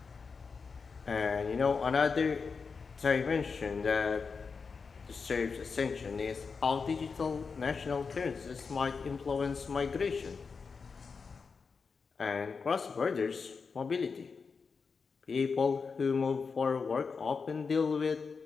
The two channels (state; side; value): quieter; right; 5.1 dB